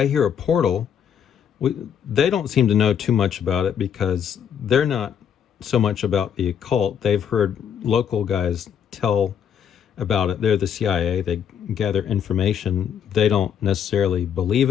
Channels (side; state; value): right; quieter; 8.3 dB